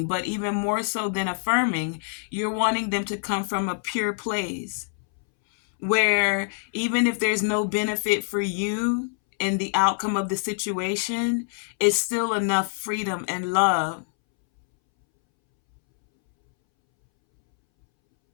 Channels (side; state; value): right; silent; 62 dB below the other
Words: but even more so than affirming, you're wanting them to come from a pure place where even if there's no benefit for you in the outcome of the situation, it's still enough freedom and love